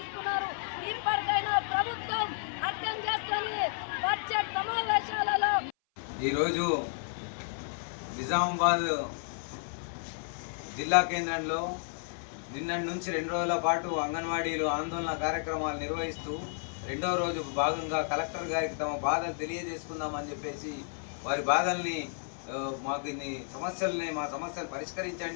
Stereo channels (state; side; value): silent; right; 56 dB below the other